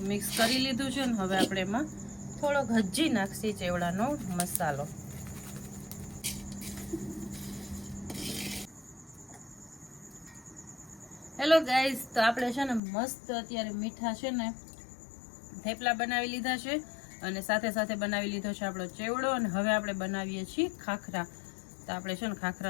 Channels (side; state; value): right; drops out; at 12.8 s